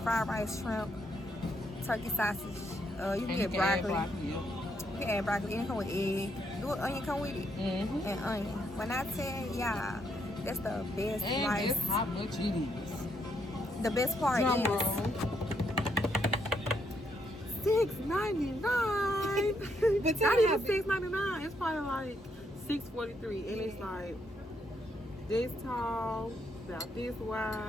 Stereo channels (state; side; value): normal; both; correlation 0.75